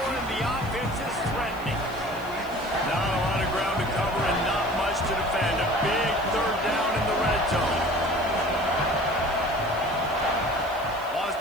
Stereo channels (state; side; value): noise; right; hiss, 21 dB below the sound